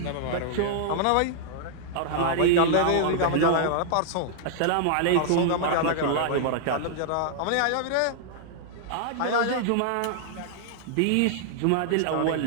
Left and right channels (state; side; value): different; both; correlation -0.01